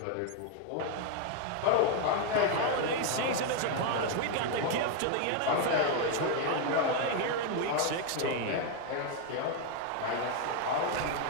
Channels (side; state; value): both; different; correlation 0.01